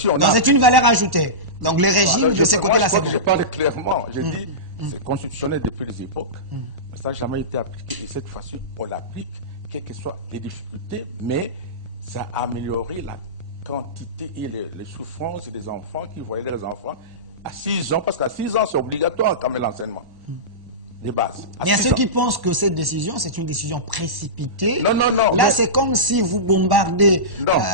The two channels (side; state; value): left; late; 1.1 ms